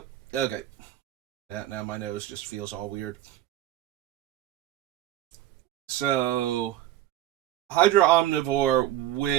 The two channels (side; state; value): left; quieter; 13.4 dB